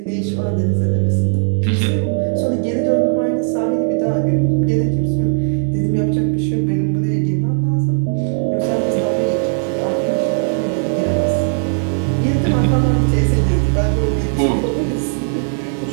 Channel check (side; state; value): left; silent; digital silence